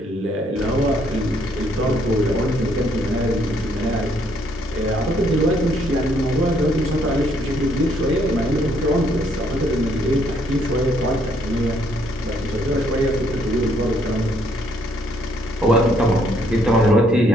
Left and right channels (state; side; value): normal; both; correlation 0.69